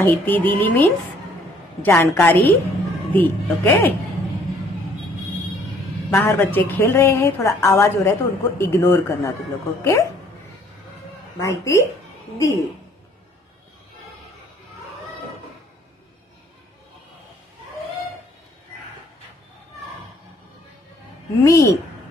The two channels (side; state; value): both; normal; correlation 0.61